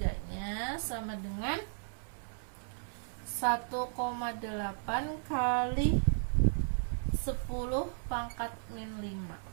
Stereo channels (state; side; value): silent; left; 55 dB below the other